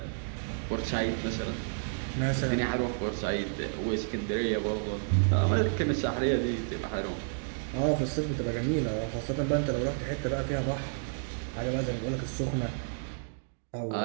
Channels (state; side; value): silent; left; digital silence